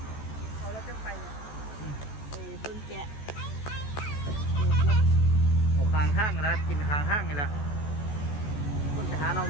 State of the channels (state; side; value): late; right; 14 ms